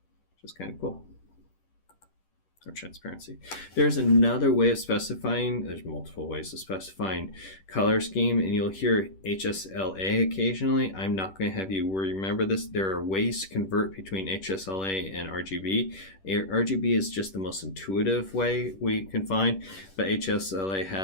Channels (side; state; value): right; late; 10 ms